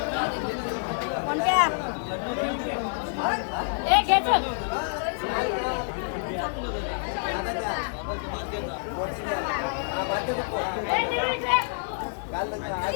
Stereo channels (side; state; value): right; silent; digital silence